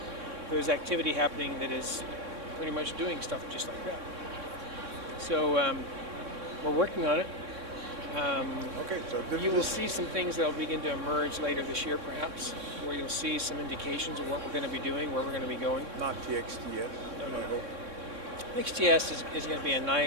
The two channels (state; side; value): late; left; 3.6 ms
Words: there's activity happening that is pretty much doing stuff just like that. So we're working on it. Okay, so you will see some things that will begin to emerge later this year, perhaps, where you'll see some indications of what we're going to be doing, where we're going to be going. Not the XTS. No. XTS is going to be